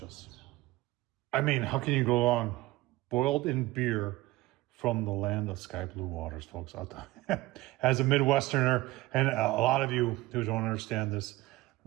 I mean, how can you go wrong? Boiled in beer from the land of sky blue waters, folks. As a Midwesterner, and a lot of you who don't understand this,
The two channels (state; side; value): quieter; left; 18.8 dB